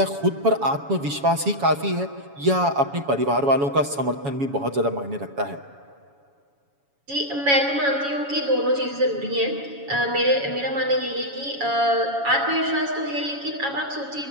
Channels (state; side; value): late; left; 7.1 ms